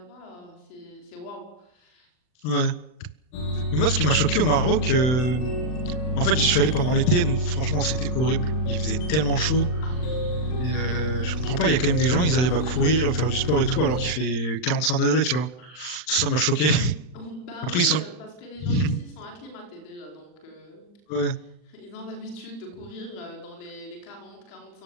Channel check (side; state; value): right; late; 40 ms